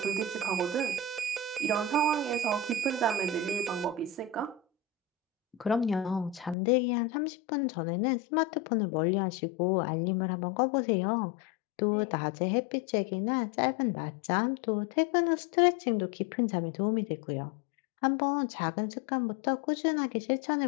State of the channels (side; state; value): right; drops out; at 6.6 s